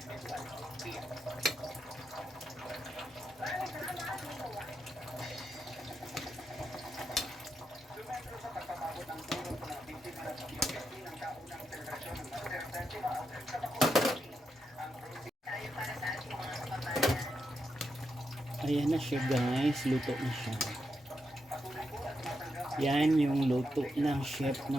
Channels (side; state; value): both; normal; correlation 0.84